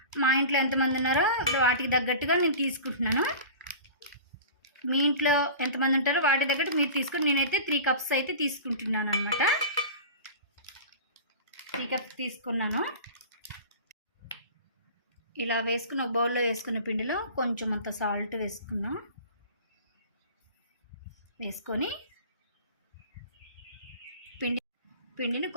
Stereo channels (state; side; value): inverted; both; correlation -0.36